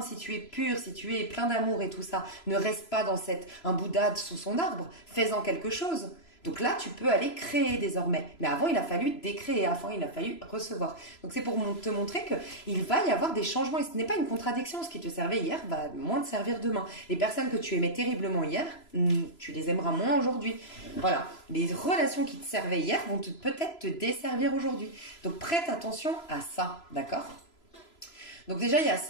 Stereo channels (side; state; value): right; late; 3.0 ms